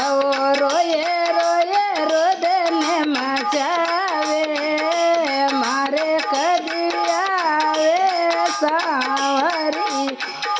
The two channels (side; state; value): both; identical; correlation 1.00